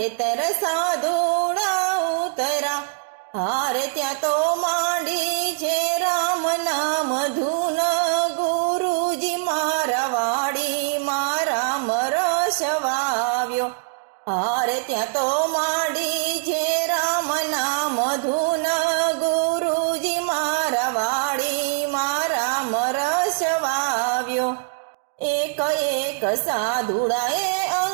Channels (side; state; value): left; silent; 60 dB below the other